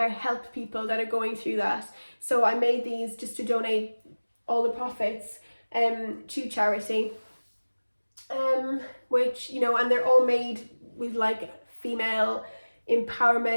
help people that are going through that. So I made these just to donate all the profits to charity, which, you know, and they're all made with like female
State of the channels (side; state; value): both; inverted; correlation -1.00